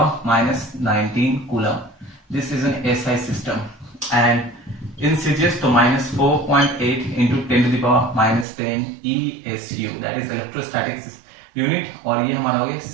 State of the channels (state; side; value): drops out; left; at 8.5 s